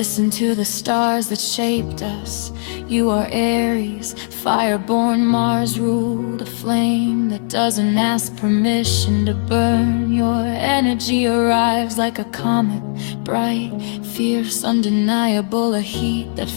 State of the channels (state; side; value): silent; right; digital silence